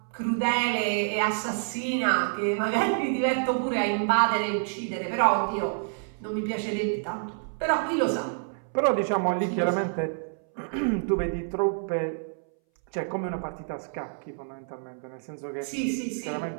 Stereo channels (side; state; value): left; silent; 60 dB below the other